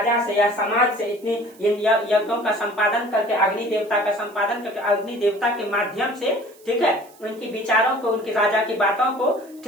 से या समाज से इतनी इन यज्ञों का संपादन करके, अग्नि देवता का संपादन करके, अग्नि देवता के माध्यम से, ठीक है, उनकी विचारों को, उनकी राजा की बातों को,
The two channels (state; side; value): noise; right; hiss, 27 dB below the sound